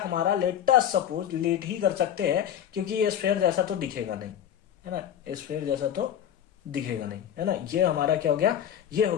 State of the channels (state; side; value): quieter; right; 9.9 dB